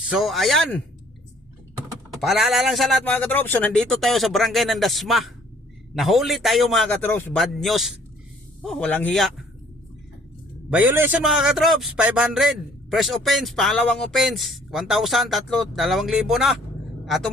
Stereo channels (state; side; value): normal; both; correlation 0.59